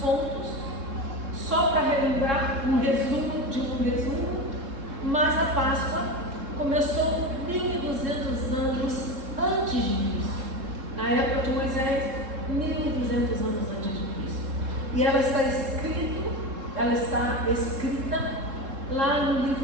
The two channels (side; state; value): left; late; 3.7 ms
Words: só para relembrar um resumo de um resumo, mas a Páscoa começou 1200 anos antes de Cristo. Na época de Moisés, 1200 anos antes de Cristo. E ela está escrita lá no